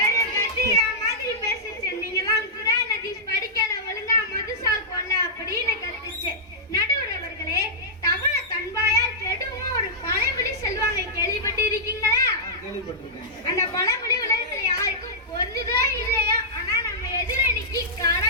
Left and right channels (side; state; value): both; normal; correlation -0.14